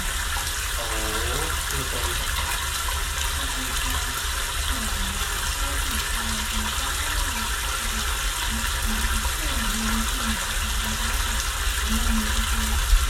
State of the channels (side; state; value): both; identical; correlation 1.00